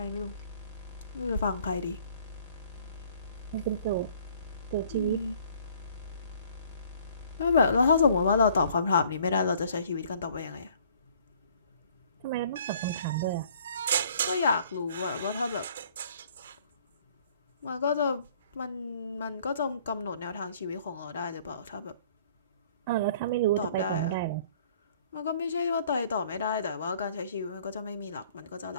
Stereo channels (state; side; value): inverted; both; correlation -0.57